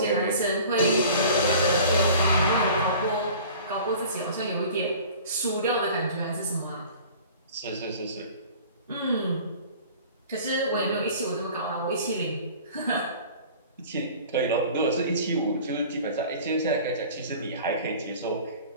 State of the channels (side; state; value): both; inverted; correlation -0.44